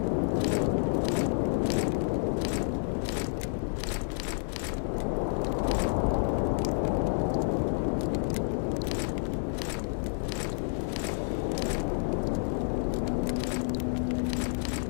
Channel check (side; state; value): right; silent; digital silence